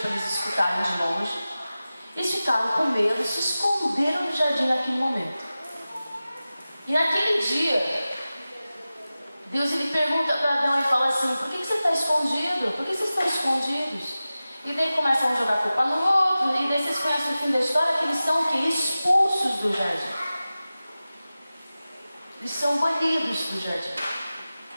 eles escutarem de longe. Eles ficaram com medo, se esconderam no jardim naquele momento. E naquele dia, Deus ele pergunta para Adão e fala assim: por que você está escondido? Por que vocês estão escondidos? E daí começam a jogar culpa no outro, e daí vocês conhecem o fim da história, que eles são o quê? Expulsos do jardim. Eles são banidos do jardim.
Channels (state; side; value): inverted; both; correlation -0.96